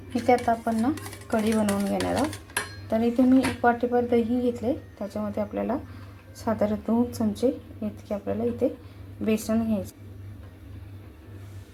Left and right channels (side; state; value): both; identical; correlation 1.00